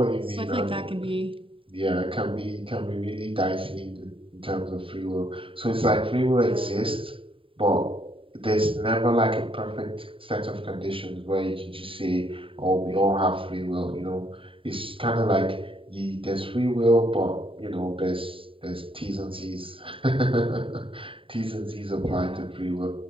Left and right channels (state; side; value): late; left; 0.25 ms